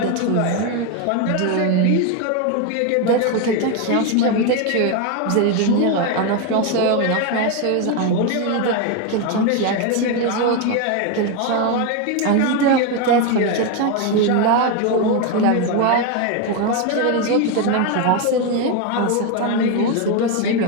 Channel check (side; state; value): both; different; correlation 0.02